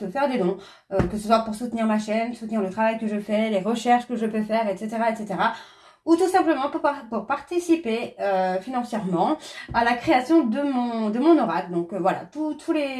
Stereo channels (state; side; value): identical; both; correlation 1.00